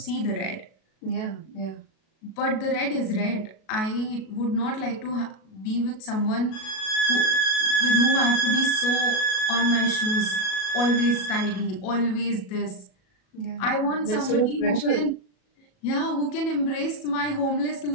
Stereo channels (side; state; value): right; late; 37 ms